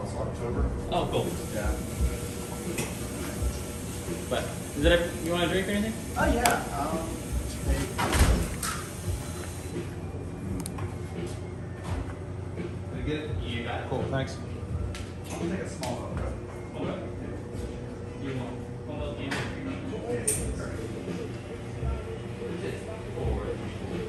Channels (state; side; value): identical; both; correlation 1.00